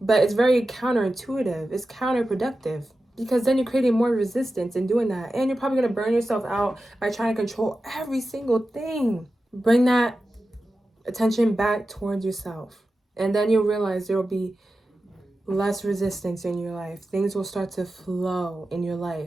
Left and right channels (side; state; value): both; normal; correlation 0.93